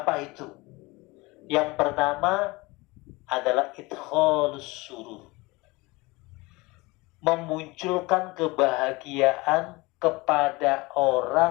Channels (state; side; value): quieter; right; 23.5 dB